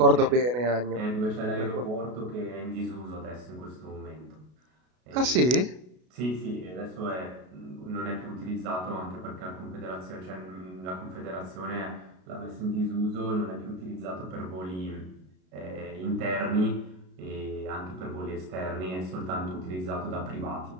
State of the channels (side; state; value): left; late; 33 ms